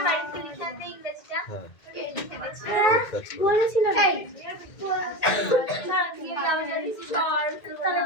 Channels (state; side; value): late; right; 2.0 ms